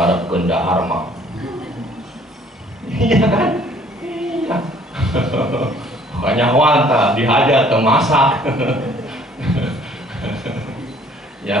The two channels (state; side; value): normal; both; correlation 0.58